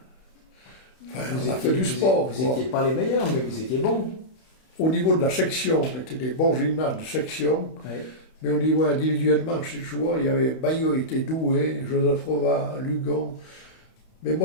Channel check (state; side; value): late; right; 31 ms